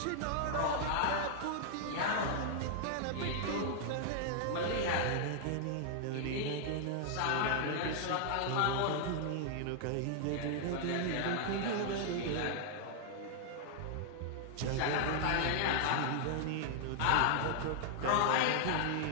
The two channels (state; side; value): different; both; correlation -0.01